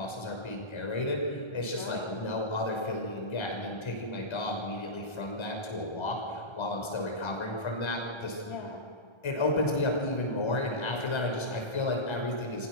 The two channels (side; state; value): right; late; 1.3 ms